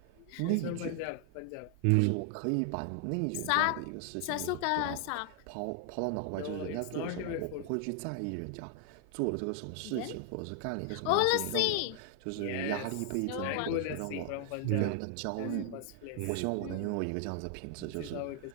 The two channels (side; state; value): both; different; correlation 0.00